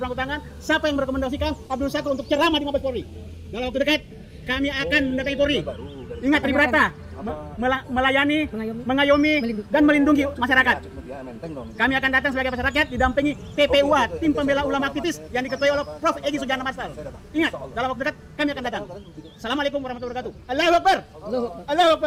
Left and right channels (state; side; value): identical; both; correlation 1.00